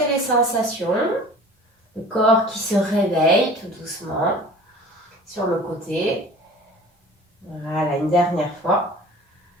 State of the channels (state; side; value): normal; both; correlation 0.43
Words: les sensations. Le corps qui se réveille tout doucement sur le côté. Voilà, une dernière fois.